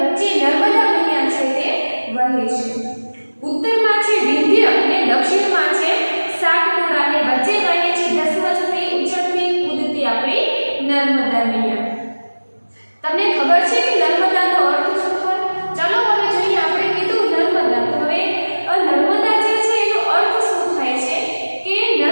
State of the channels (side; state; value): both; inverted; correlation -1.00